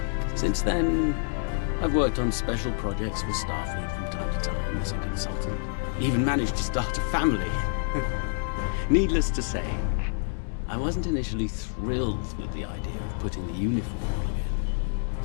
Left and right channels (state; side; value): silent; right; digital silence